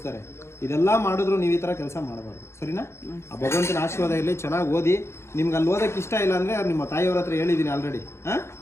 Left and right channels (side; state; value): right; late; 0.13 ms